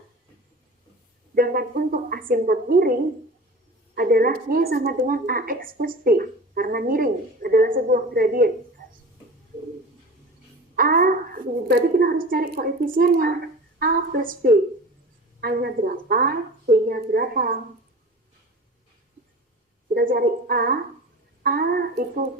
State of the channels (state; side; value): normal; both; correlation 0.36